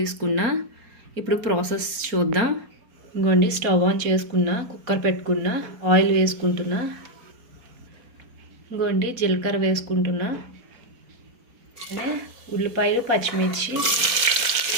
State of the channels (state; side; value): late; left; 4.3 ms